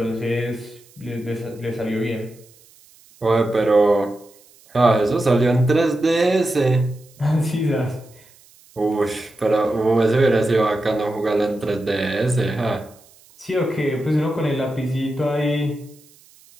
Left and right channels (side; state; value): right; noise; hiss, 28 dB below the sound